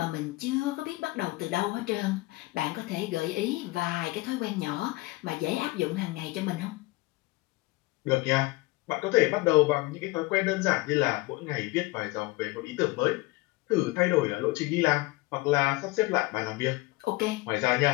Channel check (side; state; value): right; quieter; 21.9 dB